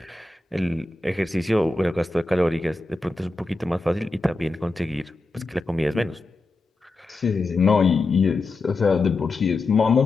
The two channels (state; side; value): quieter; right; 3.3 dB